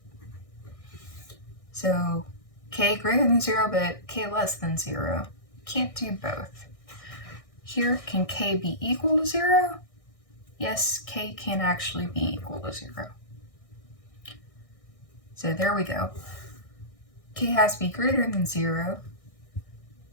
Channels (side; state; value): right; late; 1.6 ms